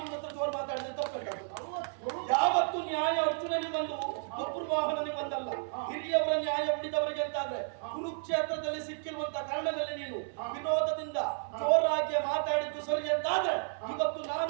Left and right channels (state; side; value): silent; left; 56 dB below the other